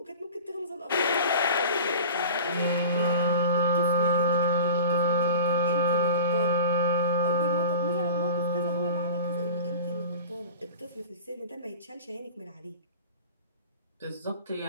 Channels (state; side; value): inverted; both; correlation -0.38